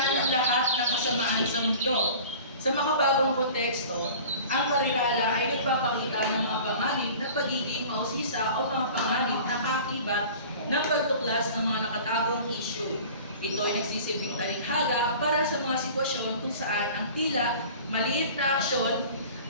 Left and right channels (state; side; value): inverted; both; correlation -0.42